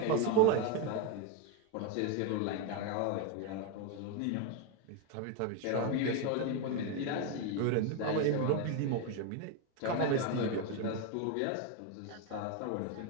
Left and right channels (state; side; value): different; both; correlation 0.01